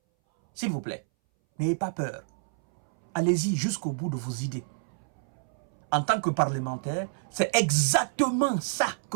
S'il vous plaît, n'ayez pas peur. Allez-y jusqu'au bout de vos idées. En tant que parlementaire, c'est exactement ça que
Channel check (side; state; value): left; silent; 59 dB below the other